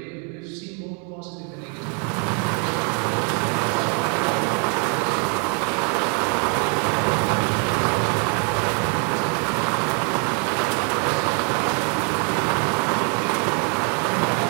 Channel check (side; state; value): left; quieter; 38.8 dB